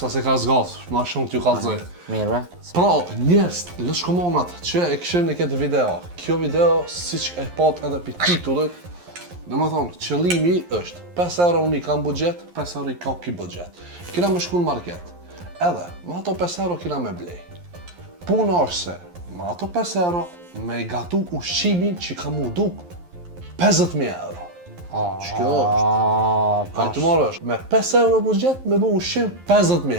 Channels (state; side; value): late; left; 11 ms